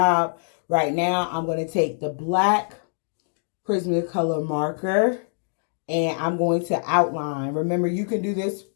Right now, I'm going to take the black Prismacolor marker, and I'm going to outline. Remember, you can do this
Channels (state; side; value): silent; right; digital silence